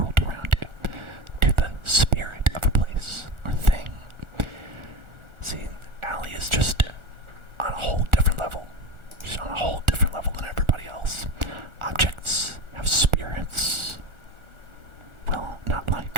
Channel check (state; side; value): late; left; 1.4 ms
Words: around you, to the spirit of a place or thing. See, Allie is just on a whole different level. She's on a whole different level than everybody else. Objects have spirits. Well, not